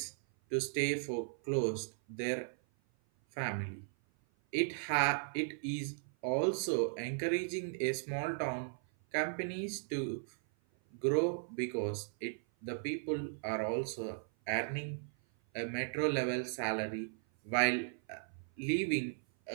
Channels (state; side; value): silent; left; 53 dB below the other